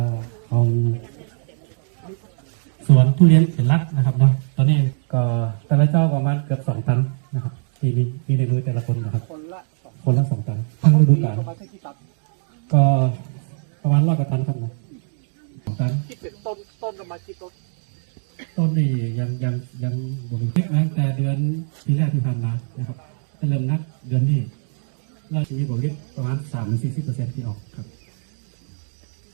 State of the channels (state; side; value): silent; left; digital silence